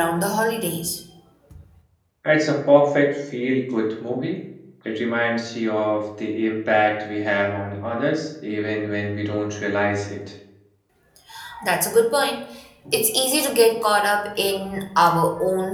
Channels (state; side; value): identical; both; correlation 1.00